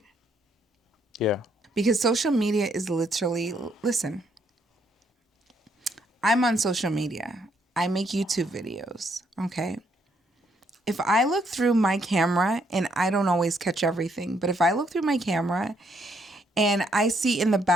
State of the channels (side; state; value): both; normal; correlation 0.72